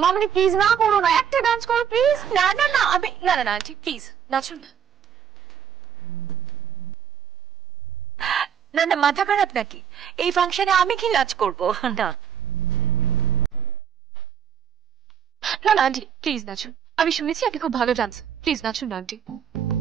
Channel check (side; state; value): left; quieter; 8.1 dB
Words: মাম্মি প্লিজ না করো না, একটা ডান্স করো প্লিজ। না না না, আমি না না না ঠিক প্লিজ নাচুন না। না না, মাথা খারাপ নাকি? এই ফাংশনে আমি কি নাচ করবো? না না না আন্টি প্লিজ নাচুন, আমি শুনেছি আপনি খুব ভালো ডান্স, প্লিজ নাচুন না আন্টি।